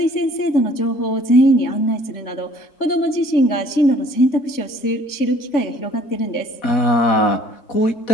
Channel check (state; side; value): late; right; 3.5 ms